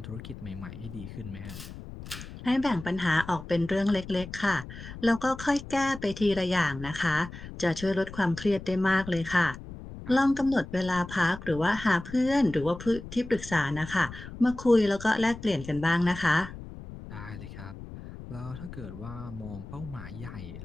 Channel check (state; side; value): noise; left; rumble, 13 dB below the sound